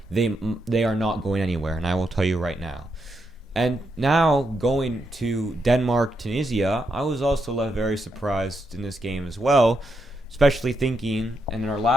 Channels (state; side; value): normal; both; correlation 0.82